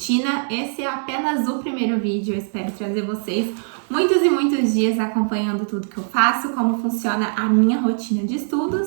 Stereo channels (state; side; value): silent; left; digital silence